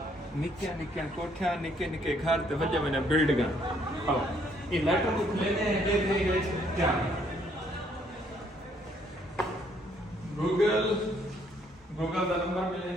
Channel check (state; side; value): normal; both; correlation 0.67